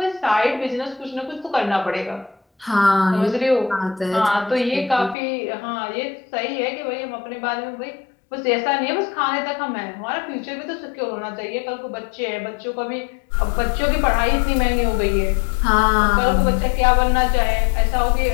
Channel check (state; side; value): drops out; right; at 5.2 s